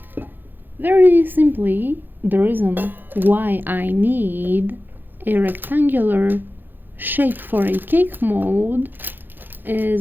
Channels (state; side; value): late; left; 0.092 ms